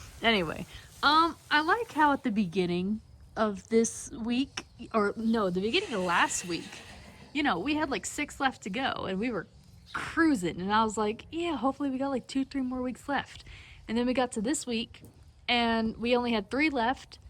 Anyway, I like how at the beginning of this week, or no, the beginning of last week, you know, we had like 6 left to go and we were cruising. And I was like, yeah, hopefully we got like 2-3 more weeks left. And then we got to this week and we only had 3 left,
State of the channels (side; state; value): both; identical; correlation 1.00